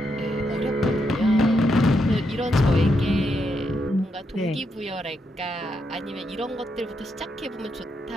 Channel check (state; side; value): normal; both; correlation 0.81